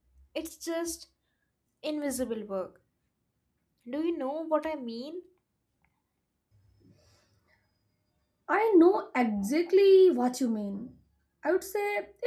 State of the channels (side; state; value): both; identical; correlation 1.00